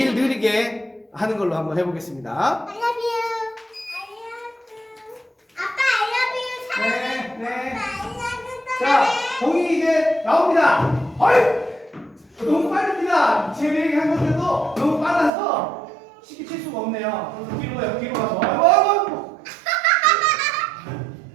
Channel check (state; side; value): drops out; left; at 15.3 s